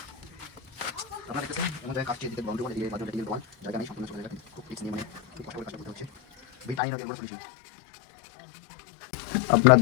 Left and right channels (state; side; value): drops out; right; at 6.8 s